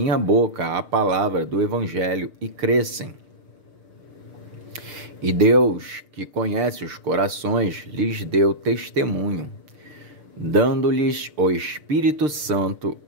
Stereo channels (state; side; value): late; left; 6.7 ms